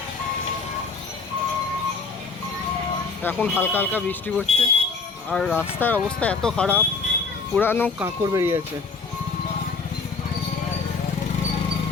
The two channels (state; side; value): quieter; right; 4.6 dB